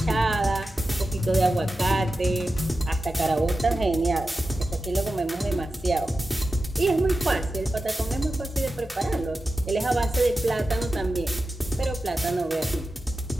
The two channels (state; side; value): normal; both; correlation 0.92